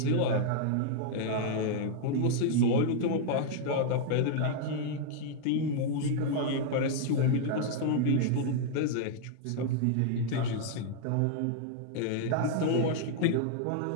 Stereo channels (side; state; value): both; different; correlation -0.01